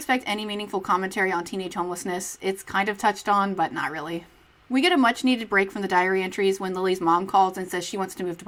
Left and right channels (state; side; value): identical; both; correlation 1.00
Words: any meaningful commentary on teenage homelessness. It's kind of touched on, but not really. We get a much-needed break from the diary entries when Lily's mom calls and says she wants to move to